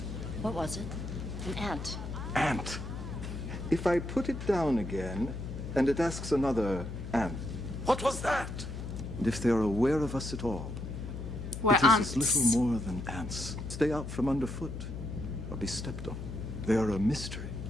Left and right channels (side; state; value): left; noise; hum, 7 dB below the sound